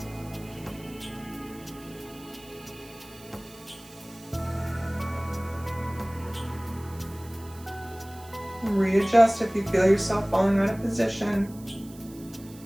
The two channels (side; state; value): right; noise; hiss, 21 dB below the sound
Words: Readjust if you feel yourself falling out of position.